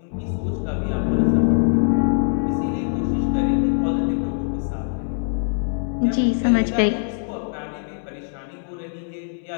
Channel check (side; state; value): right; silent; digital silence